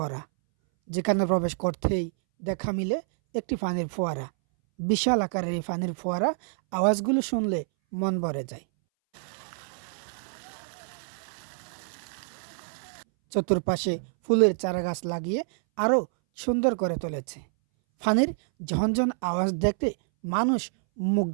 যেখানে প্রবেশ করতেই দেখা মিলে একটি পানির ফোয়ারা। বিশাল আকারের এই পানির ফোয়ারা আওয়াজগুলো শুনলে মন ভরে যায়। চতুর্পাশে ফুলের চারাগাছ লাগিয়ে আরও সুন্দর করে তুলেছে। পানির ঝনঝন আওয়াজ দেখতে মানুষ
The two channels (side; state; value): left; silent; 60 dB below the other